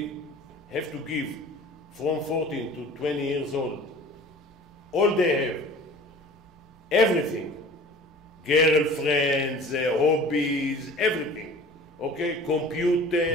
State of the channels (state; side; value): normal; both; correlation 0.44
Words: have to give from 14 to 20 years old all they have, everything, girlfriends, hobbies, everything. Okay,